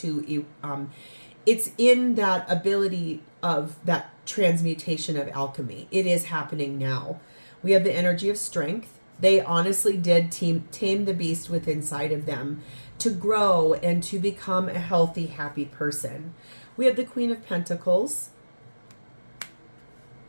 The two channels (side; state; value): both; inverted; correlation -1.00